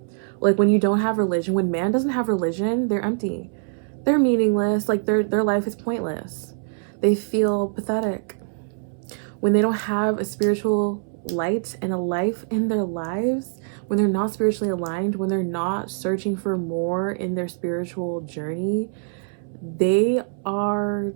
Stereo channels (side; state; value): left; silent; 63 dB below the other